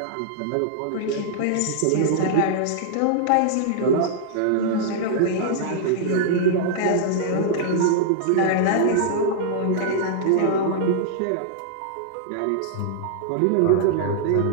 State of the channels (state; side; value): different; both; correlation -0.01